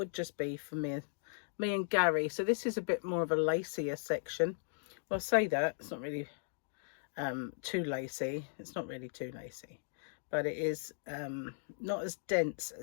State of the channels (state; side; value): silent; right; digital silence